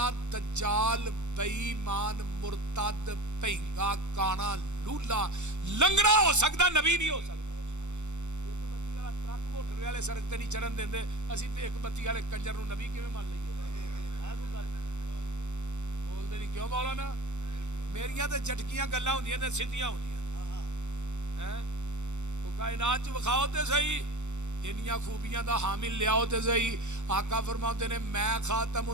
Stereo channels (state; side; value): late; left; 0.84 ms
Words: دجال بے ایمان مرتد پہنگا کانا لولا لنگڑا ہو سکتا، نبی نہیں ہو سکتا. والے سڑک تے نہیں چڑھن دیندے، اسی تے ایک بتی والے کنجر نو نبی کیویں مان لئیے؟ بولدے نہیں کیوں مولانا؟ میریاں تے جھٹکیاں گلاں ہوندیاں تے سیدھیاں ہوندیاں. او کائنات چ وکھاؤ تے صحیح، انیاں خوبیاں دا حامل لیاؤ تے صحیح. آقا فرماتے نے میں خاتم